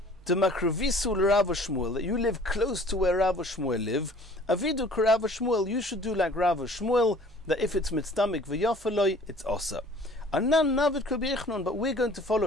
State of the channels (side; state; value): both; normal; correlation 0.51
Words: the Makrevisu Rav Shmuel, that you live close to where Rav Shmuel live. Avidu Rav Shmuel, you should do like Rav Shmuel, that if it's mitztamik v'yofeloi, it's osa. Anan navid Rabbi Yochanan, but we're going to